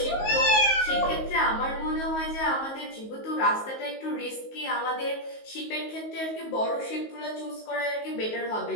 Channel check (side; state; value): right; late; 19 ms